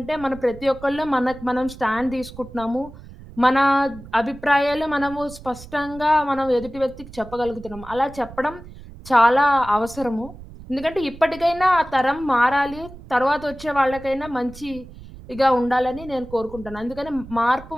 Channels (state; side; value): noise; right; rumble, 17 dB below the sound